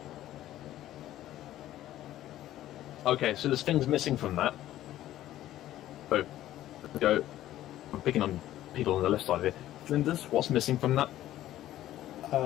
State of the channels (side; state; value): right; quieter; 13.6 dB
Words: Okay, so there's things missing from that. So, go. I'm picking on people on the left side of it. Flinders, what's missing from that?